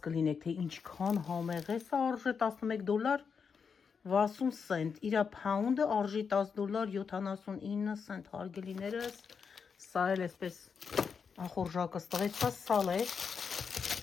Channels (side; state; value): right; quieter; 6.0 dB